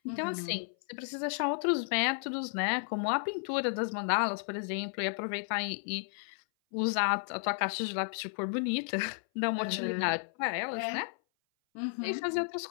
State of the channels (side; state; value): right; silent; 56 dB below the other